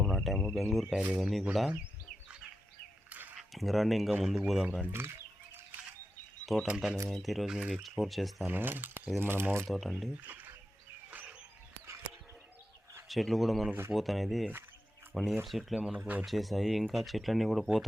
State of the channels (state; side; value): normal; both; correlation 0.89